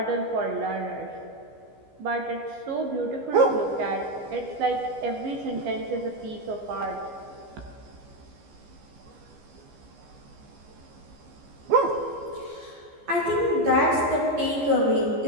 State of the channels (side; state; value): left; late; 15 ms